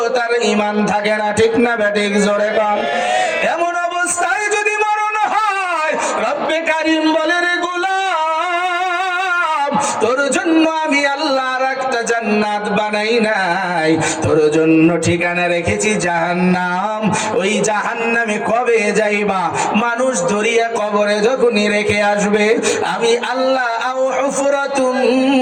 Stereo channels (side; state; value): both; identical; correlation 1.00